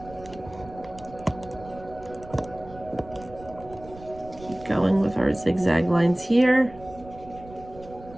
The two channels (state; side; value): noise; right; rumble, 18 dB below the sound